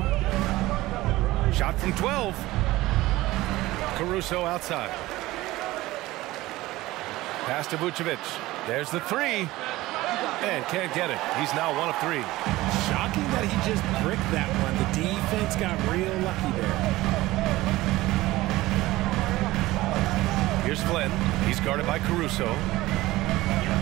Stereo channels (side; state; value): left; quieter; 18.1 dB